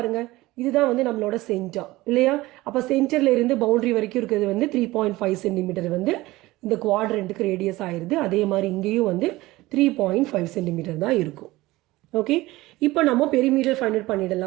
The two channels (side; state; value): left; quieter; 18.9 dB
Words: இதுதான் வந்து நம்மளோட சென்டர் இல்லையா? அப்போ சென்டரில் இருந்து பவுண்ட்ரி வரைக்கும் இருக்கிறது வந்து 3.5 சென்டிமீட்டர் வந்து இந்த குவாட்ரண்ட்டுக்கு ரேடியஸ் ஆயிடுது. அதே மாதிரி இங்கேயும் வந்து 3.5 சென்டிமீட்டர் தான் இருக்கும். ஓகே, இப்போ நம்ம பெரிமீட்டர் ஃபைண்ட் அவுட்